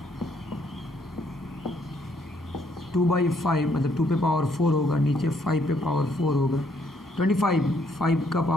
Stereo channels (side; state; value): both; normal; correlation 0.69